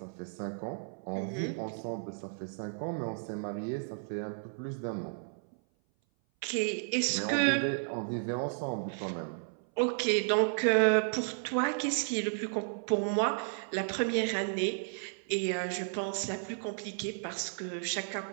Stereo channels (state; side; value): silent; left; 56 dB below the other